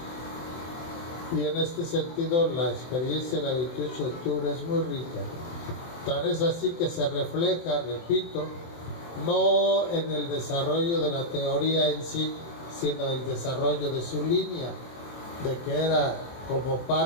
Y en este sentido, la experiencia del 28 de octubre es muy rica. Tal es así que se refleja, repito, no en el desarrollo de la teoría en sí, sino el desarrollo de su línea, de que era como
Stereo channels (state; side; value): late; right; 23 ms